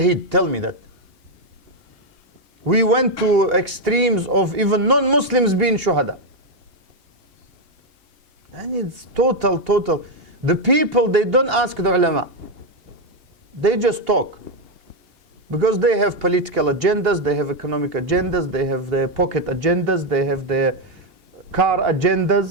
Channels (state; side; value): late; left; 2.8 ms